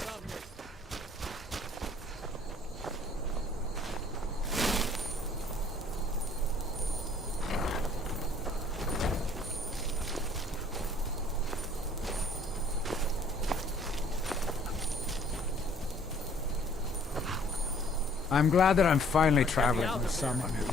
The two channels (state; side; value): normal; both; correlation 0.57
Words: I'm glad that I'm finally traveling with someone who